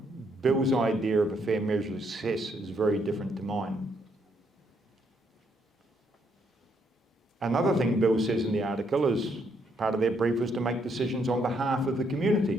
Bill's idea of a fair measure of success is very different to mine. Another thing Bill says in the article is part of their brief was to make decisions on behalf of the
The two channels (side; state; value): both; normal; correlation 0.73